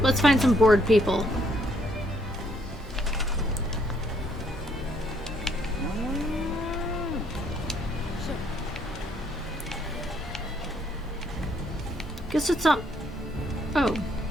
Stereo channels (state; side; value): normal; both; correlation 0.69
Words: let's find some bored people. Guess it's not. Oh. I